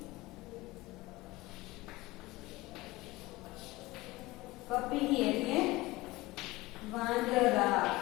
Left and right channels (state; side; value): quieter; right; 20.2 dB